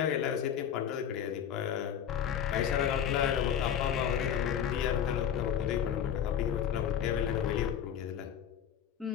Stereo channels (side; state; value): right; quieter; 9.0 dB